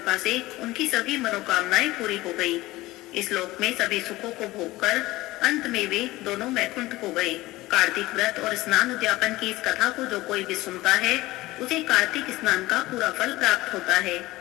से उनकी सभी मनोकामनाएं पूरी हो गई। इस लोक में सभी सुखों को भोगकर अंत में वे दोनों वैकुंठ को गए। कार्तिक व्रत और स्नान उद्यापन की इस कथा को जो कोई भी सुनता है उसे कार्तिक स्नान का पूरा फल प्राप्त होता है।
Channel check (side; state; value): right; quieter; 18.6 dB